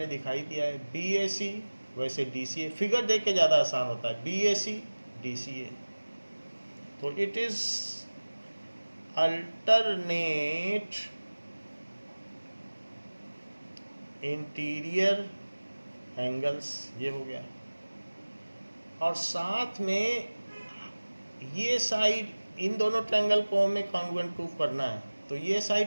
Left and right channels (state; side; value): inverted; both; correlation -1.00